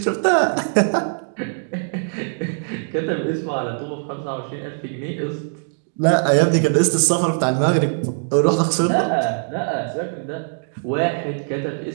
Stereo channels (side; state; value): left; silent; digital silence